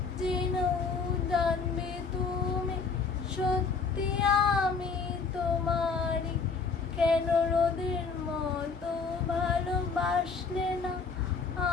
যেন জানবে তুমি সত্যি আমি তোমারই। কেন রোদের মতো ভালোবাসলে না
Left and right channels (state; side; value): quieter; right; 5.0 dB